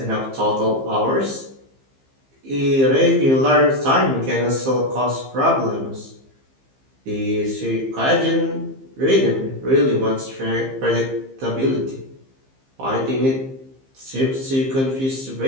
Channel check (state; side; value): late; left; 15 ms